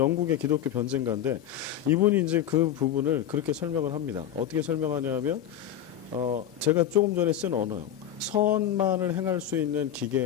기독교 변증가인데 이분이 이제 그 부분을 그렇게 설명을 합니다. 어떻게 설명하냐면 제가 조금 전에 쓴 언어요. 선만을 행할 수 있는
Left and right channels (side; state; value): right; quieter; 10.4 dB